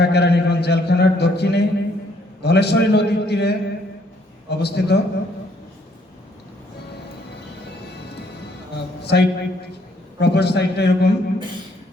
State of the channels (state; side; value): normal; both; correlation 0.67